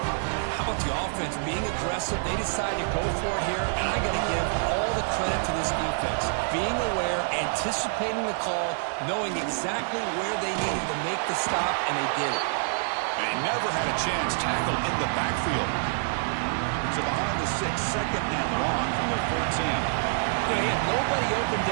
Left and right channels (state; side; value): silent; left; digital silence